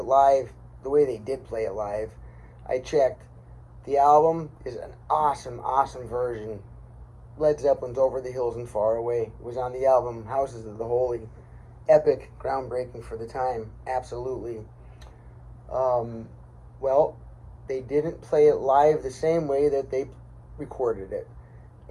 live, the way they did play it live. I checked. The album is an awesome, awesome version. Led Zeppelin's Over the Hills and Far Away. It was on the album Houses of the Holy. Epic, groundbreaking for the time. Absolutely. Well, they didn't play it live the same way that they recorded it.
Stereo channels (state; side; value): identical; both; correlation 1.00